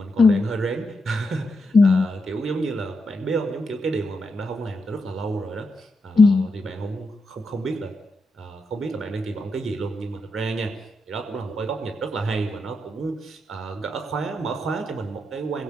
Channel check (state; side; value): normal; both; correlation 0.84